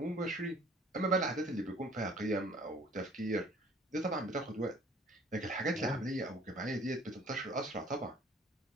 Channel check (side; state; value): both; normal; correlation 0.54